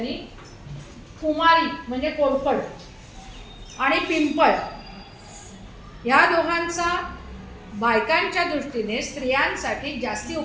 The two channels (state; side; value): identical; both; correlation 1.00